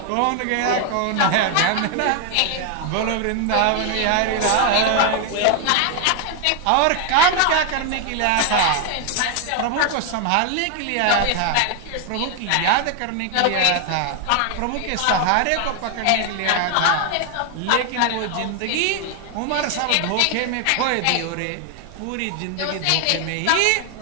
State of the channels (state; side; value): different; both; correlation 0.00